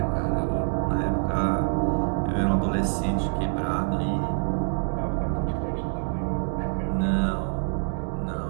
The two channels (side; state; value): left; silent; digital silence